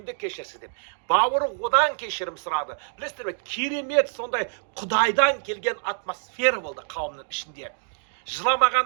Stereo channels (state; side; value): silent; left; digital silence